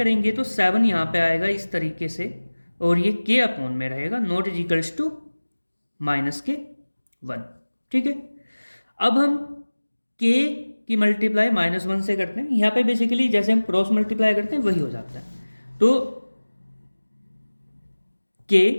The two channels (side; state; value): both; inverted; correlation -1.00